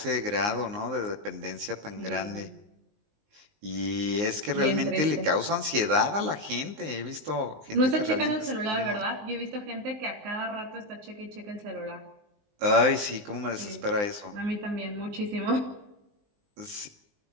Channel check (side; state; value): left; late; 19 ms